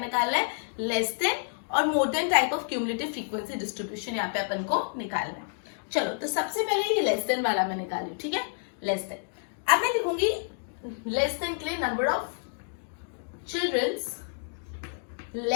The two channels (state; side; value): silent; right; digital silence